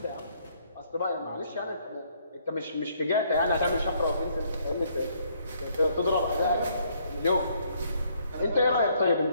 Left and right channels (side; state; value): both; inverted; correlation -0.67